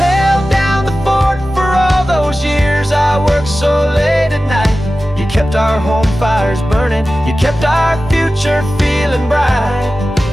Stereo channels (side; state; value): both; normal; correlation 0.95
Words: down the fort for all those years I worked so late at night. You kept our home fires burning, you kept our future feeling bright.